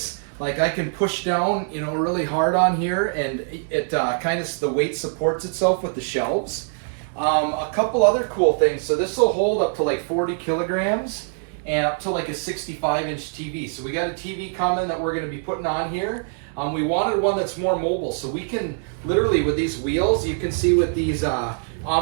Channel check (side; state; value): left; silent; 63 dB below the other